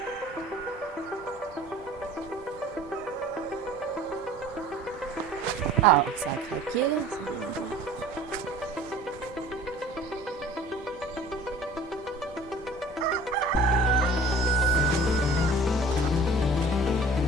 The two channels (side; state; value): both; normal; correlation 0.46